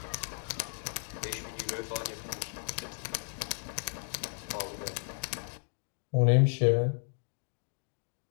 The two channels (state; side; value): silent; right; 55 dB below the other